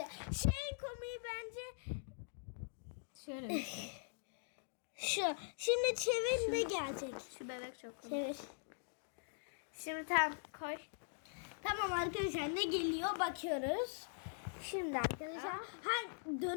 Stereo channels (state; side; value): silent; right; digital silence